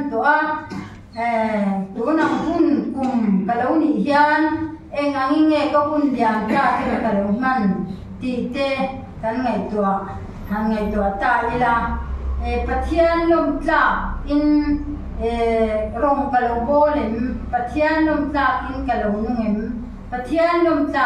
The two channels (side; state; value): both; identical; correlation 1.00